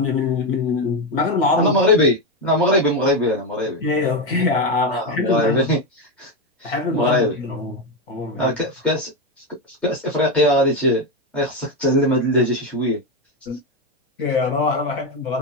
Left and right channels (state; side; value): normal; both; correlation 0.09